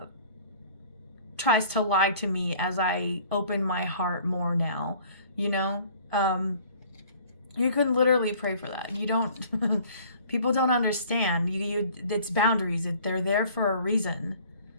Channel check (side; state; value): both; inverted; correlation -0.52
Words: tries to lie to me as I open my heart more now, you know? You can literally pray for that. You don't, people don't understand. It's boundaries. They're there for a reason.